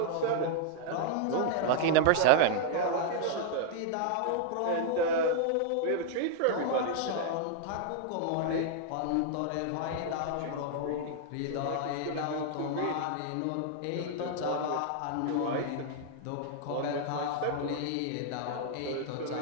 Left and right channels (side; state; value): both; different; correlation -0.01